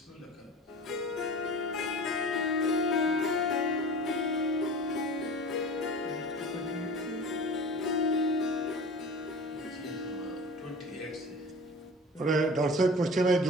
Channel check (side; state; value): both; normal; correlation 0.38